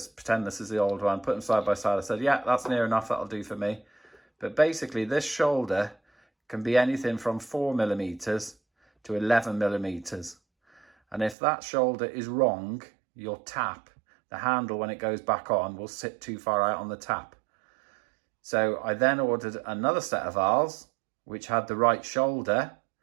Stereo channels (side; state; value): left; drops out; at 11.4 s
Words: this is the old one. Put them side by side. I said, yeah, that's near enough. That'll do for me. But basically, this shoulder can be anything from 4mm to 11mm. And if that shoulder is wrong, your tap, the handle when it goes back on, will sit too far out on the tap. So I then ordered another set of valves, which had the right shoulder.